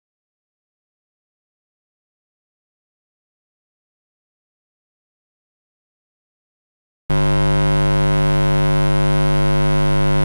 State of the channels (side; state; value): both; inverted; correlation -1.00